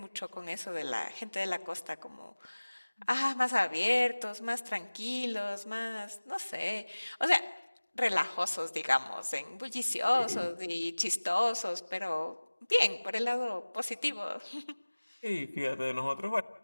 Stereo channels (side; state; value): both; inverted; correlation -1.00